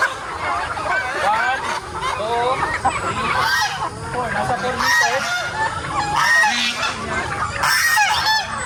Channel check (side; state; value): both; identical; correlation 1.00